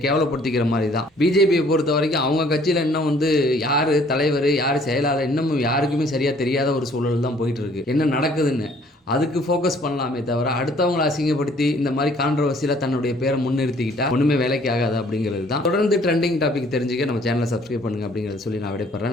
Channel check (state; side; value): normal; both; correlation 0.59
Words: கேவலப்படுத்திக்கிற மாதிரி தான். பிஜேபியை பொறுத்த வரைக்கும் அவங்க கட்சியில் இன்னும் வந்து யார் தலைவர் யார் செயலாளர் இன்னமும் யாருக்குமே சரியாக தெரியாத ஒரு சூழல் தான் போயிட்டுருக்கு. என்ன நடக்குதுன்னு அதுக்கு ஃபோக்கஸ் பண்ணலாமே தவிர, அடுத்தவங்களை அசிங்கப்படுத்தி இந்த மாதிரி கான்ட்ரவர்சியில் தன்னுடைய பேரை முன்னிறுத்திக்கிட்டா ஒன்றுமே வேலைக்கு ஆகாது அப்படிங்கிறது தான். தொடர்ந்து ட்ரெண்டிங் டாபிக் தெரிஞ்சுக்க நம்ம சேனலை சப்ஸ்கிரைப் பண்ணுங்கள் அப்படிங்கிறத சொல்லி நான்